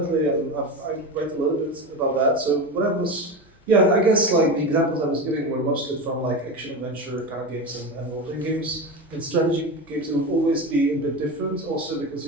I write a little bit about that. So what I was, I guess like the examples I was giving were mostly from like action adventure kind of games and role-playing games. In strategy games, it will always be a bit different, also because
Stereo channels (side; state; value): both; normal; correlation 0.22